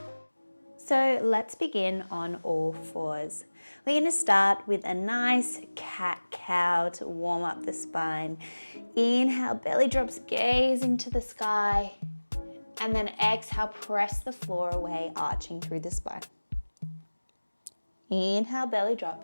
So let's begin on all fours. We're going to start with a nice cat-cow to warm up the spine. Inhale, belly drops, gaze into the sky. And then exhale, press the floor away, arching through the spine. Inhale, belly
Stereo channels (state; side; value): inverted; both; correlation -1.00